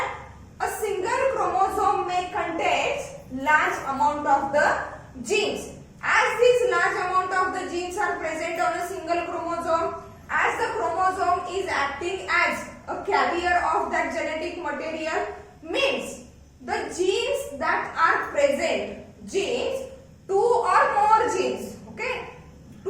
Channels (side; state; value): both; identical; correlation 1.00